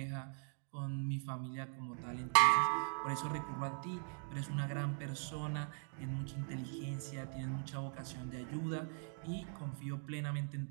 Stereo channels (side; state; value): left; silent; 51 dB below the other